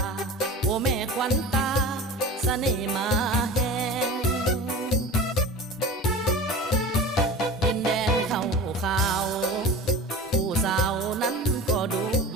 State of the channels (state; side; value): normal; both; correlation 0.34